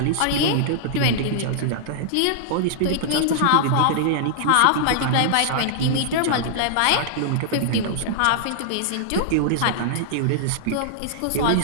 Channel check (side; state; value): both; different; correlation -0.02